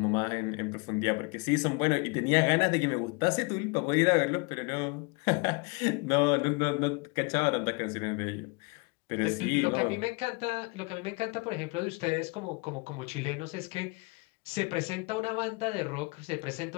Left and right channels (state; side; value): quieter; right; 29.1 dB